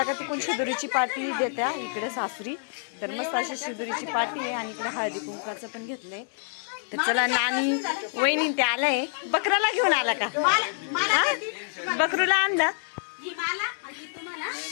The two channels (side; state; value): right; silent; 60 dB below the other